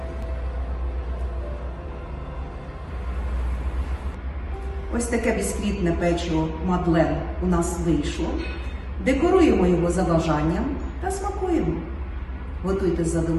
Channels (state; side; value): identical; both; correlation 1.00